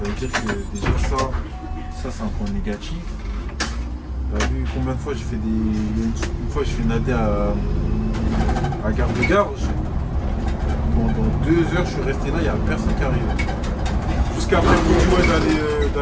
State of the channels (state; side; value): identical; both; correlation 1.00